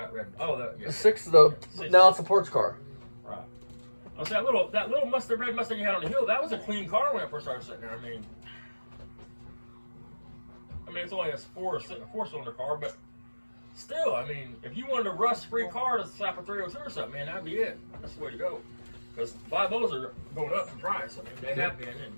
red? Oh, that. Yeah. The six of the now it's a ports car. Right. I was that little Mustang, red Mustang you had on the hill. That was a clean car when I first started sitting there. I mean, it's only a four-cylinder car, but still, I mean, if you wanted a rust-free car to slap a 302 or something, man, that'd be it. That's the way to go. Because 5.0s are going up in price. I mean, they have been, and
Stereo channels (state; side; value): inverted; both; correlation -1.00